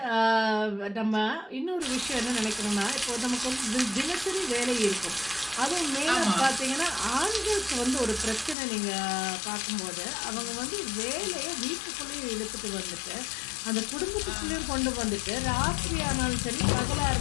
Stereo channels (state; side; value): drops out; right; at 8.6 s